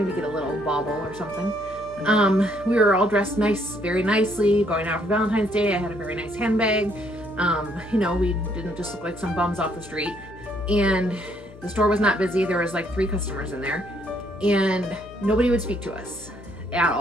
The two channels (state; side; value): noise; left; hum, 18 dB below the sound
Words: get a little bauble or something. We were all dressed very nicely, going out for Valentine's Day. I had a very nice handbag. You know, we didn't just look like some bums off the street. And the store was not busy. There was like 3 customers in there, and nobody would speak to us at